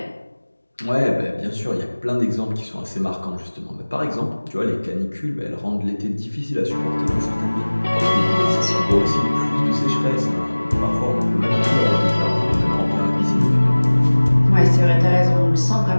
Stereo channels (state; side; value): inverted; both; correlation -1.00